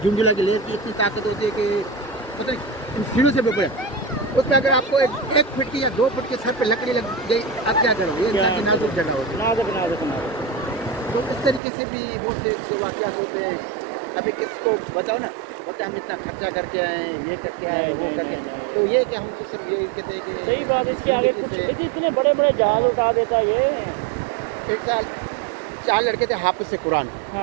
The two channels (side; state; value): left; drops out; at 11.6 s